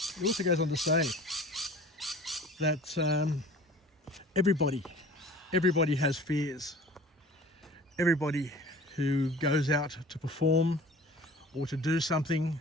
also goes on to say that everybody has fears. Everybody who goes out to perform or to do something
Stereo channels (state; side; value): normal; both; correlation 0.44